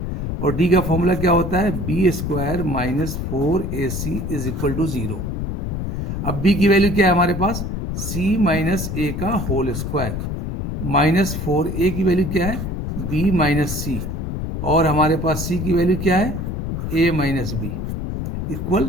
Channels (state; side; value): noise; left; rumble, 3 dB below the sound